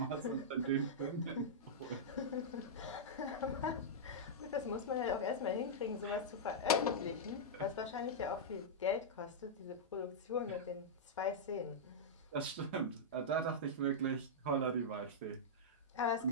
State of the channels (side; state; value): both; normal; correlation -0.09